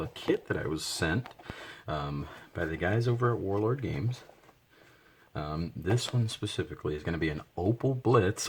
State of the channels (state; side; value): identical; both; correlation 1.00